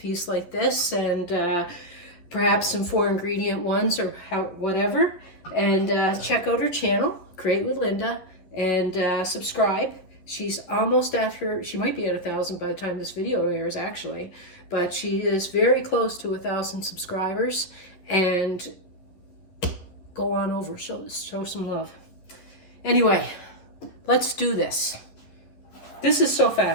like this, and perhaps some 4 ingredient ones or whatever. And check out her channel, Create with Linda, and subscribe. She's almost after, she might be at 1,000 by the time this video airs actually, but she is very close to 1,000 subscribers. And go on over, show some love. Anyway, let's do this. This is so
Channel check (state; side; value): late; right; 11 ms